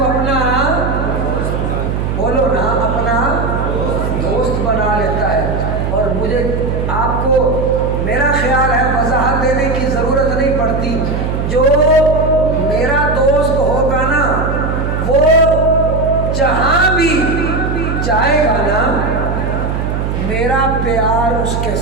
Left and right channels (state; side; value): noise; right; hum, 2 dB below the sound